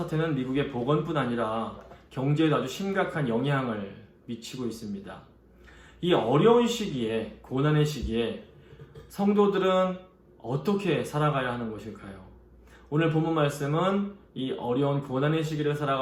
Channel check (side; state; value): both; identical; correlation 1.00